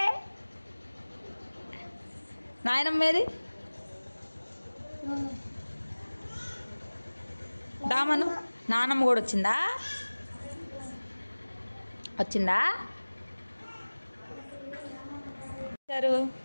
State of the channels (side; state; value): both; inverted; correlation -1.00